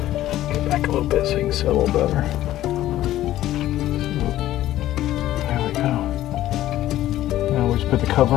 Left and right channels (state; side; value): quieter; right; 13.9 dB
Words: Get back a little bit so you can see a little better. There we go. Now we just put the cover